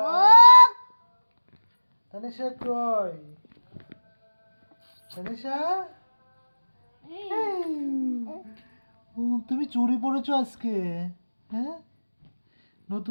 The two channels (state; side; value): inverted; both; correlation -1.00